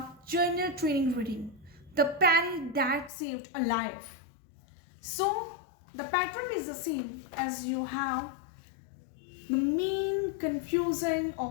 journal training reading, The Penny That Saved a Life. So the pattern is the same as you have the main confusion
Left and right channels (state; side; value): drops out; right; at 3.1 s